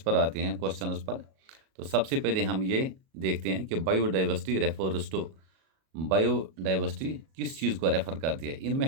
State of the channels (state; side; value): late; left; 37 ms